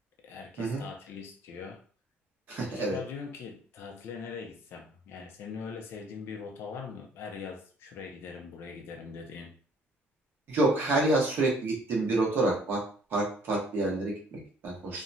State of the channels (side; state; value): both; normal; correlation 0.60